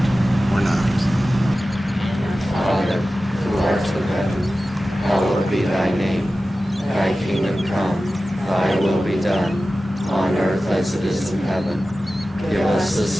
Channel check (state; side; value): normal; both; correlation 0.95